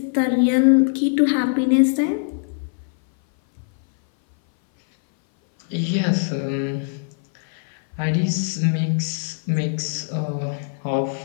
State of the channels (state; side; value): silent; right; 59 dB below the other